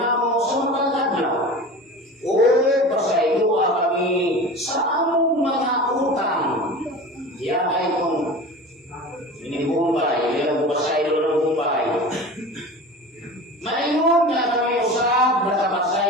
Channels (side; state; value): both; normal; correlation 0.34